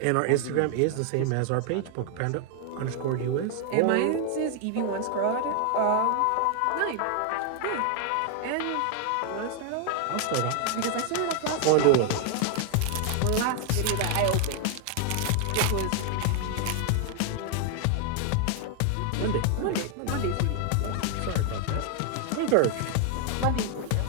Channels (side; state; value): both; different; correlation 0.00